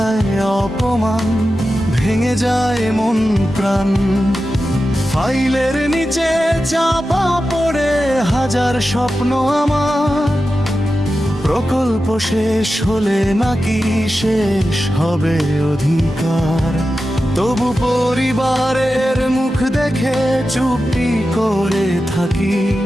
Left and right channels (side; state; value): both; normal; correlation 0.92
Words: অপমান ভেঙে যায় মন প্রাণ। ফাইলের নিচে চাপা পড়ে হাজার স্বপ্ন আমার, প্রকল্প শেষ হলে নাকি শেষ হবে অধিকার। তবু পরিবারের মুখ দেখে চুপটি করে থাকি,